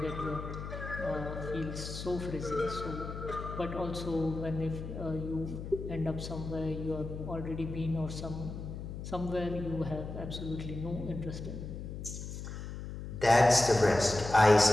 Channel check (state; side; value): noise; left; hum, 8 dB below the sound